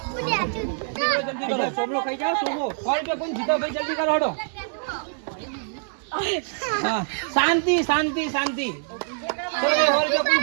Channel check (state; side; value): silent; left; digital silence